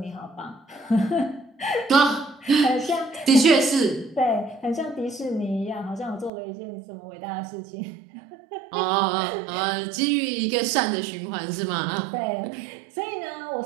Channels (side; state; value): left; drops out; at 6.3 s